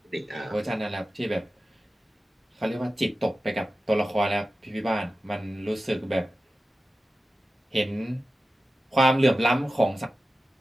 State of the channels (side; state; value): both; normal; correlation 0.94